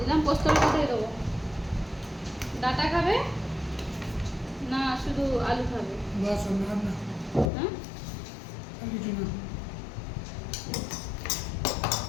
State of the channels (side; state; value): right; drops out; at 7.5 s